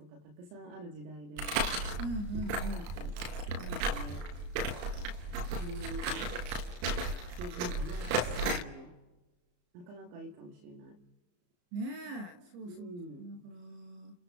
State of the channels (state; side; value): late; left; 34 ms